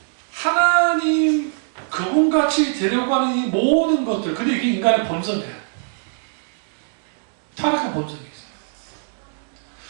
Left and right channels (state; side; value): silent; left; 64 dB below the other